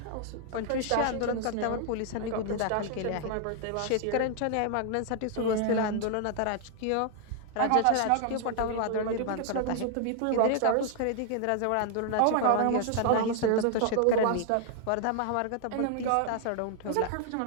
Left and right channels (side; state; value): both; different; correlation 0.00